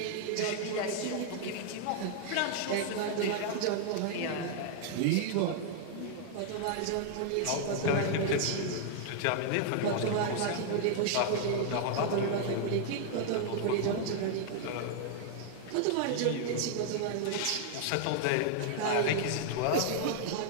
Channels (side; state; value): both; different; correlation 0.00